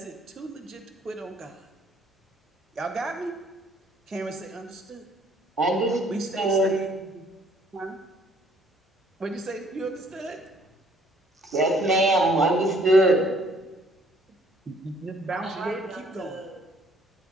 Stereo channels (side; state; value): both; normal; correlation 0.62